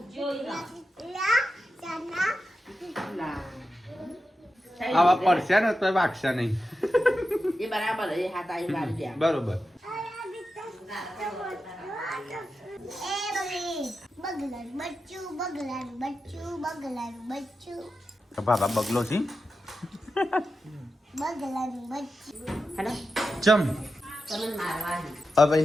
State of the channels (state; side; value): normal; both; correlation 0.90